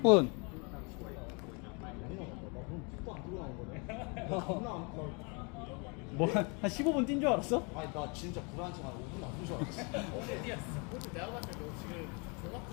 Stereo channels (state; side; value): quieter; right; 32.6 dB